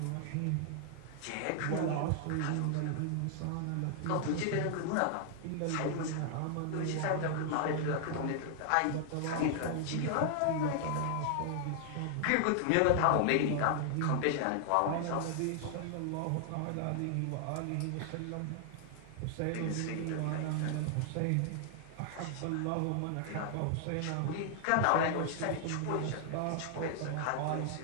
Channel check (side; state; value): both; different; correlation 0.00